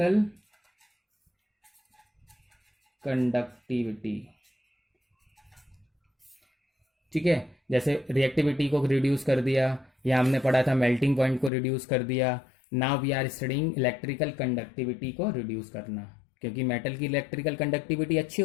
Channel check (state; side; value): drops out; right; at 11.5 s